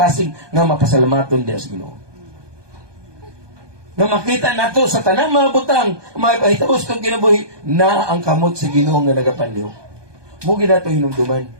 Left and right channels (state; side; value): late; left; 1.2 ms